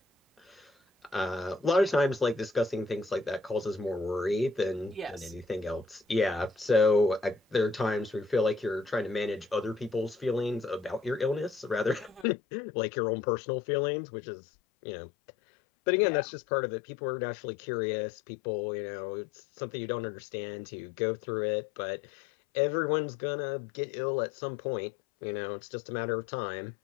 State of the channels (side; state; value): right; drops out; at 12.2 s